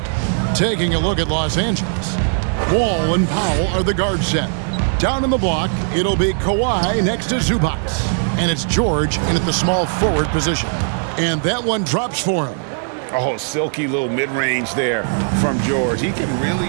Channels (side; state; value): left; silent; digital silence